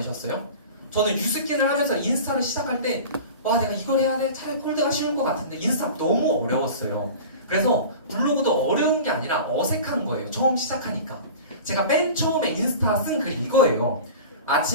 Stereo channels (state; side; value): inverted; both; correlation -0.36